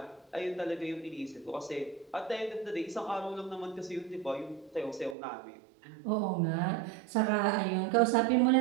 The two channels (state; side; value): drops out; left; at 5.2 s